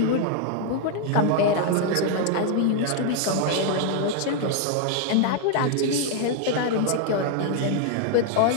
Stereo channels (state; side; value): different; both; correlation 0.00